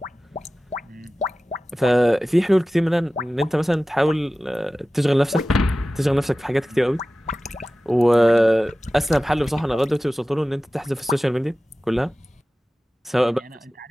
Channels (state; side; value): normal; both; correlation 0.96